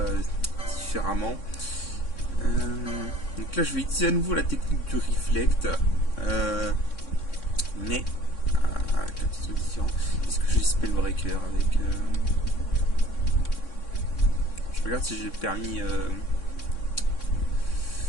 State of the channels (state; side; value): late; right; 3.6 ms